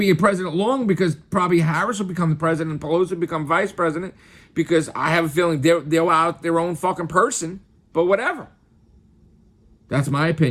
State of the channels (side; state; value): both; identical; correlation 1.00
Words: a president long because probably Harris will become the president and Pelosi will become vice president because I have a feeling they're out their own fucking person. But whatever. That's my